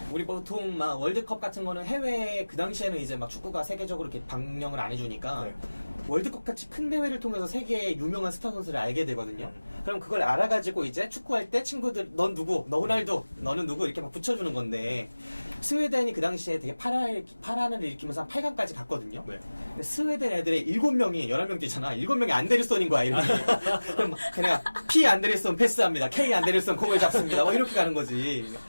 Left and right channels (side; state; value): both; inverted; correlation -1.00